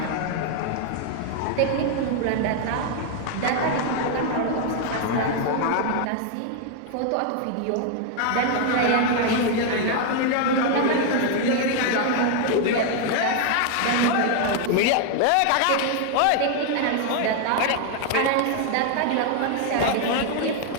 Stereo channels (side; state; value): both; different; correlation 0.00